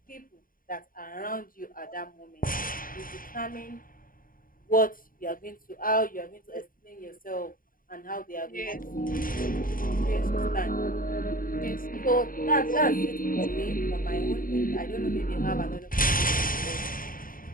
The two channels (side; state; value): right; late; 0.41 ms